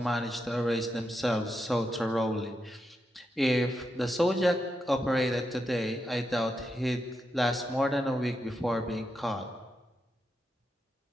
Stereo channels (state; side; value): normal; both; correlation 0.85